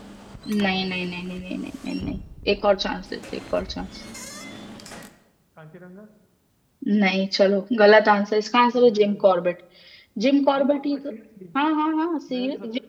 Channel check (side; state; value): both; identical; correlation 1.00